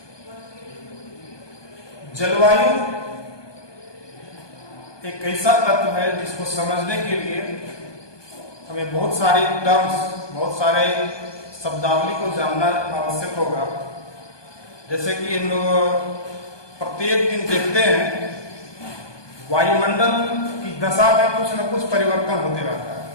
जलवायु एक ऐसा तत्व है जिसको समझने के लिए हमें बहुत सारे टर्म्स, बहुत सारे शब्दावली को जानना आवश्यक होगा। जैसे कि हम लोग प्रत्येक दिन देखते हैं वायुमंडल की दशा में कुछ न कुछ परिवर्तन होते रहता है,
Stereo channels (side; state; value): right; late; 1.2 ms